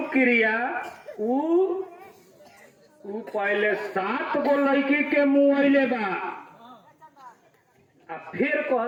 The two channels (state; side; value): identical; both; correlation 1.00